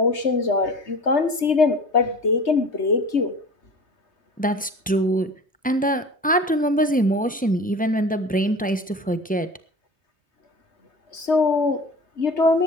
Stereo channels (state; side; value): normal; both; correlation 0.38